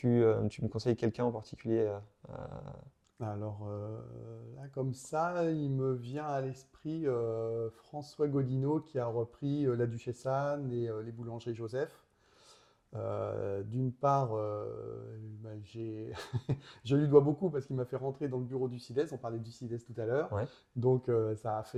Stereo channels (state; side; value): identical; both; correlation 1.00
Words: me conseilles quelqu'un en particulier Alors là, comme ça, il me vient à l'esprit François Godineau qui a repris la Duchesse Anne et les boulangeries Joseph. D'une part, je lui dois beaucoup parce qu'il m'a fait rentrer dans le bureau du CIDES. On parlait du CIDES tout à l'heure. Ouais. Donc ça a